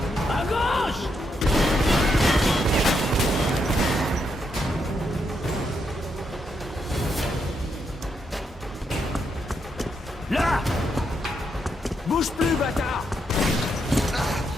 À gauche! Là! Bouge plus, bâtard!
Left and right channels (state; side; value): normal; both; correlation 0.80